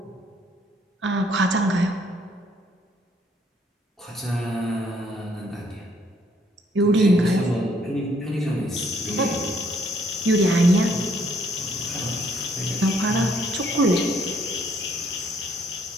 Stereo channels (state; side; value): normal; both; correlation 0.66